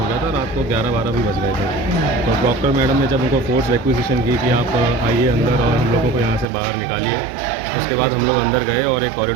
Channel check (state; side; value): drops out; left; at 6.5 s